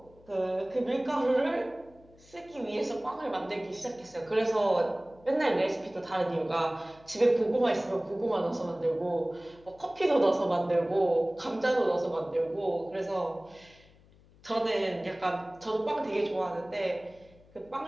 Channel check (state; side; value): noise; left; hum, 27 dB below the sound